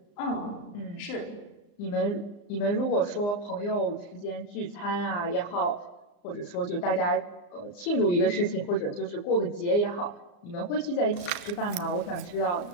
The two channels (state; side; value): late; right; 34 ms